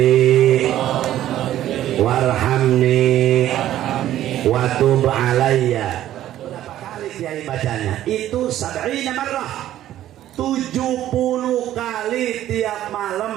warhamni wa tub alayya. Berapa kali kiai bacanya? Itu 70 marrah, 70 kali tiap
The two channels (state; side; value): quieter; left; 12.8 dB